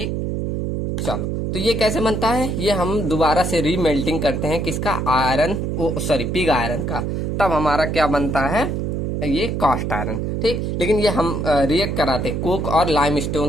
चलो, तो ये कैसे बनता है, ये हम दोबारा से रीमेल्टिंग करते हैं किसका, आयरन, सॉरी पिग आयरन का, तब हमारा क्या बनता है, ये कास्ट आयरन। ठीक, लेकिन ये हम रिएक्ट कराते कोक और लाइम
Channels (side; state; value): right; noise; hum, 1 dB below the sound